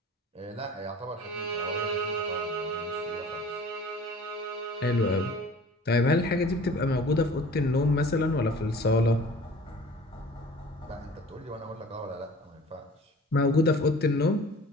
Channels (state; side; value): normal; both; correlation 0.45